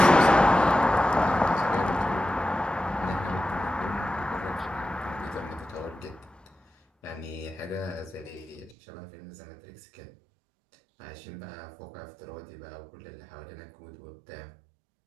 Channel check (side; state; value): left; drops out; at 8.8 s